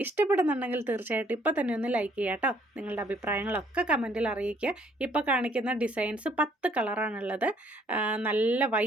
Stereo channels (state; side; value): normal; both; correlation 0.64